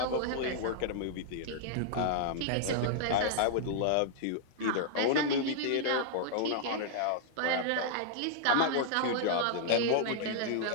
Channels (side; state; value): both; different; correlation -0.01